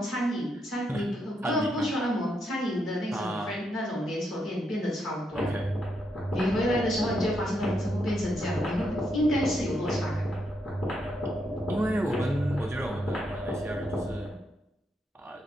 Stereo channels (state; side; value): normal; both; correlation 0.80